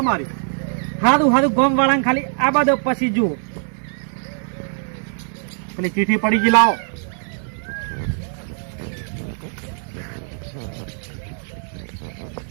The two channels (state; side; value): silent; left; digital silence